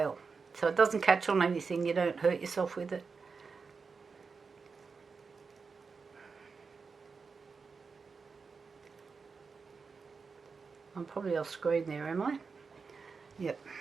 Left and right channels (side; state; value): left; quieter; 5.0 dB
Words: so it doesn't catch on anything, you don't hurt yourself with it. I'm probably off screen there, am I? Yep.